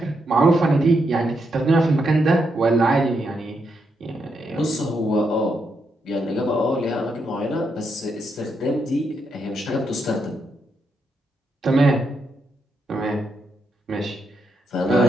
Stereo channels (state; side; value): normal; both; correlation 0.81